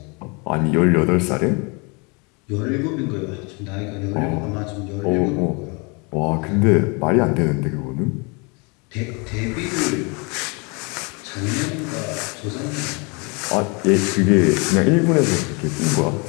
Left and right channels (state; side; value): quieter; right; 31.0 dB